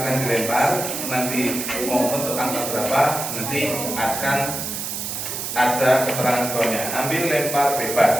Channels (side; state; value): right; noise; hiss, 5 dB below the sound